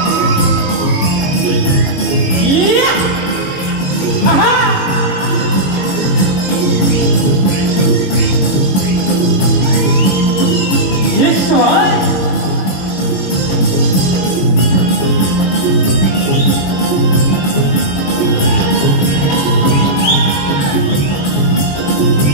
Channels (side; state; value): right; late; 22 ms